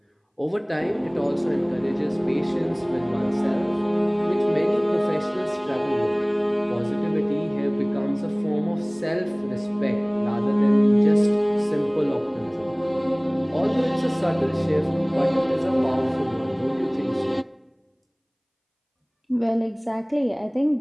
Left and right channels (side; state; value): both; identical; correlation 1.00